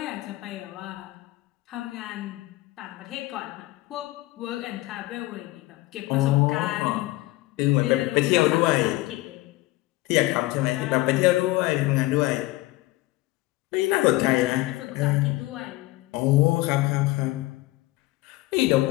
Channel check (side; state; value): right; quieter; 19.0 dB